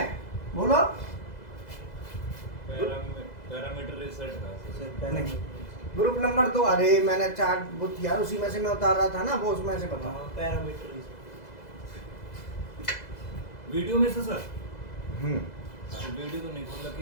बोलो। पैरामीटर रिसेट का नहीं, ग्रुप नंबर 2, अरे मैंने चार्ट बुक यार उसी में से मैं उतार रहा था ना, वो उसमें से बता। पैरामीटर वीडियो में से सर, हम्म, वीडियो तो नहीं खोला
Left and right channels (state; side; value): late; right; 2.0 ms